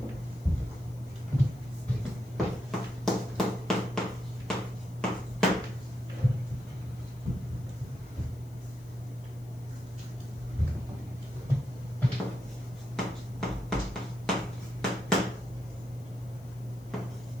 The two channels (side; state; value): left; noise; hiss, 26 dB below the sound